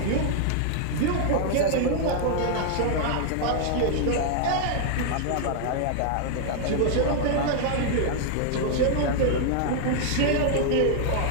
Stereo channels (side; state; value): both; different; correlation -0.01